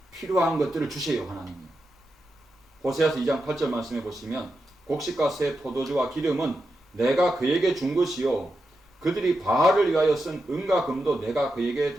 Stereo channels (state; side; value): normal; both; correlation 0.88